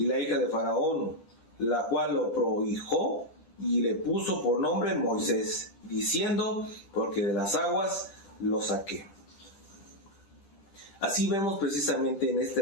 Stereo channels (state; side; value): late; right; 10 ms